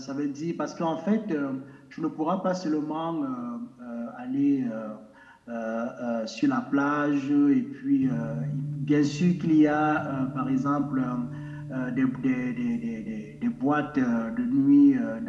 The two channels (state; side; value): identical; both; correlation 1.00